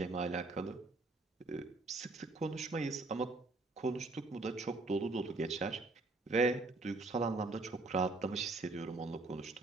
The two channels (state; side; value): quieter; left; 3.3 dB